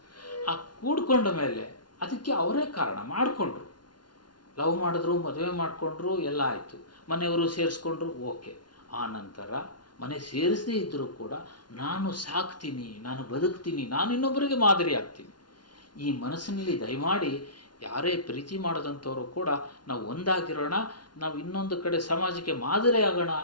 ಆ ಕೂಡ್ಕೊಂಡ ಮೇಲೆ ಅದಕ್ಕೆ ಅವರೇ ಕಾರಣ ಮಾಡಿಕೊಂಡ್ರು. ಲವ್ ಮಾಡಿದ್ರು, ಮದುವೆ ಮಾಡಿಕೊಂಡ್ರು, ಎಲ್ಲ ಆಯಿತು, ಮನೆಯವರು ಸೇರಿಸ್ಕೊಂಡ್ರು, ಓಕೆ. ಆ ನಂತರ ಮನೆ ಸೇರಿಸದೇ ಇದ್ದರೂ ಕೂಡ ನಾನು ಸಾಕ್ತೀನಿ, ನಾನು ಬದುಕ್ತೀನಿ, ನಾನು ಇನ್ನೊಬ್ಬರಿಗೆ ಮಾದರಿ ಆಗ್ತೀನಿ. ಈ ಮನಸ್ಸಿನಲ್ಲಿ ದಯಮಾಡಿ ಯಾರೇ ಪ್ರೀತಿ ಮಾಡೋದಂಥವರು ಕೂಡ ನಾವು ಒಂದಾಗಿರೋಣ, ನಾವು ಇನ್ನೊಂದು ಕಡೆ ಸಮಾಜಕ್ಕೆ ಮಾದರಿ ಆಗೋಣ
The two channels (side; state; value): right; late; 0.70 ms